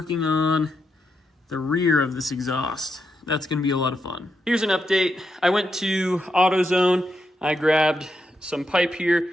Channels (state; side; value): normal; both; correlation 0.83